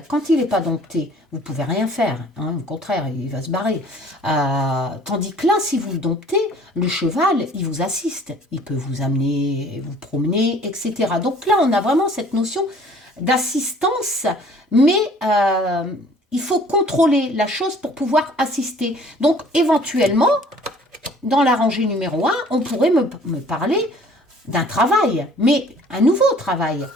quand il n'est pas dompté, vous ne pouvez rien faire. Au contraire, il va se barrer. Tandis que là, si vous le domptez, le cheval, il vous assiste. Il peut vous amener, vous promener, etc. Donc là, on a vraiment cette notion d'assistance, mais il faut contrôler la chose pour pouvoir assister. Donc, éventuellement, dans la rangée numéro 1, on pourrait me parler d'un travail, mais un nouveau travail,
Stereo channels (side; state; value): both; normal; correlation 0.53